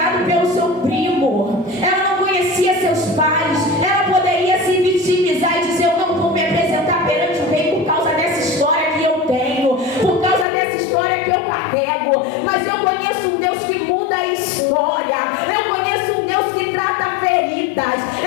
pelo seu primo, ela não conhecia seus pais, ela poderia se vitimizar e dizer: eu não vou me apresentar perante o rei por causa dessa história que eu tenho, por causa dessa história que eu carrego. Mas eu conheço um Deus que muda a história, eu conheço um Deus que trata feridas,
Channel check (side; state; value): right; drops out; at 10.5 s